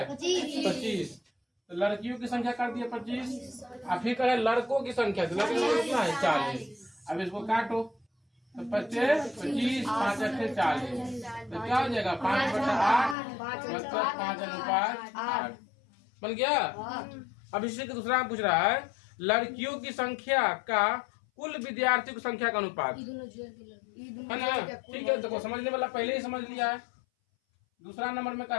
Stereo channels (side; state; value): right; drops out; at 13.2 s